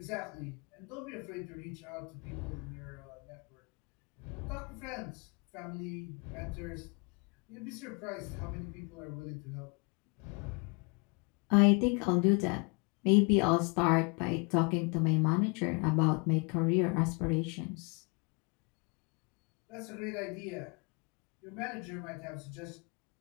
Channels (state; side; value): quieter; right; 32.6 dB